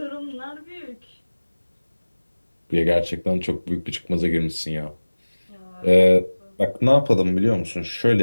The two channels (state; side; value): inverted; both; correlation -1.00